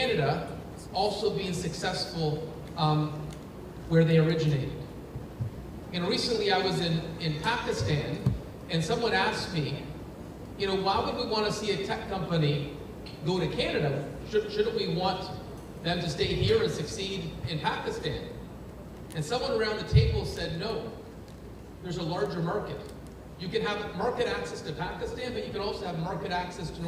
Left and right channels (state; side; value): identical; both; correlation 1.00